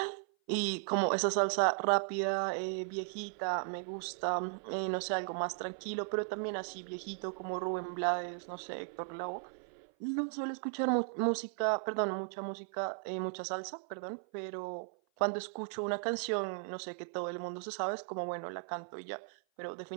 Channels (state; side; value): silent; left; 53 dB below the other